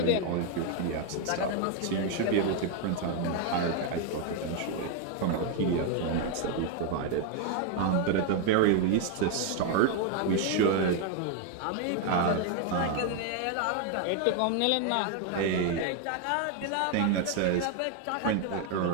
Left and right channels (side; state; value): both; different; correlation 0.01